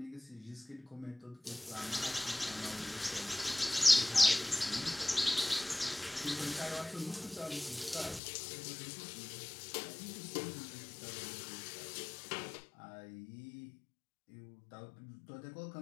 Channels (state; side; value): drops out; right; at 8.2 s